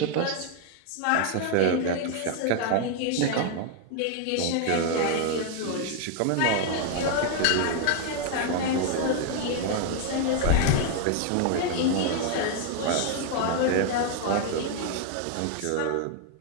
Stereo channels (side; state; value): both; different; correlation 0.00